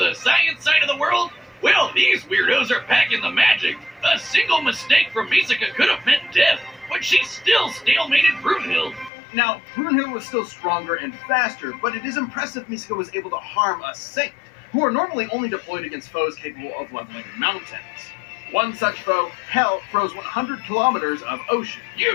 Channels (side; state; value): right; drops out; at 9.1 s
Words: science side of the world? Well, these weirdos are packing the magic. A single mistake from Misika could have meant death, but she still stalemated Brunhild. Now, Brunhild was still stronger and faster, but it is impressive Misika was able to harm a Saint, who are normally only deployed against foes capable of leveling mountains. One such foe, Hell, froze 100 kilometers of ocean.